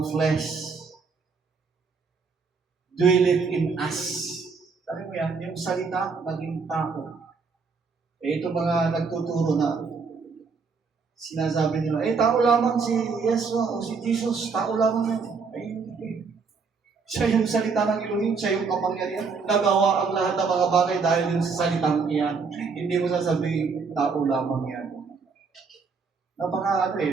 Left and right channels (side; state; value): left; quieter; 5.0 dB